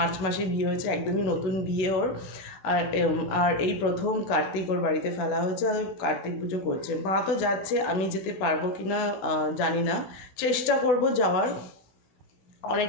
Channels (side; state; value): right; late; 16 ms